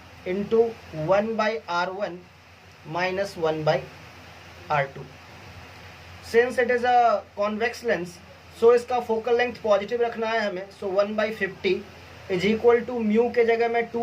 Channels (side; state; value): both; identical; correlation 1.00